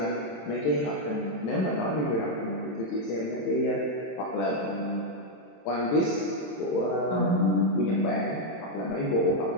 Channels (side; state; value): right; late; 27 ms